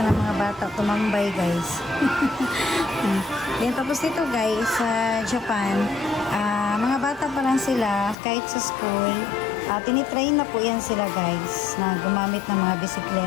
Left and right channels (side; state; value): right; drops out; at 8.2 s